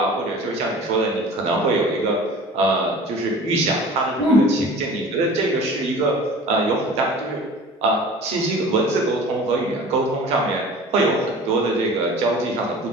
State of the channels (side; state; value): both; normal; correlation 0.42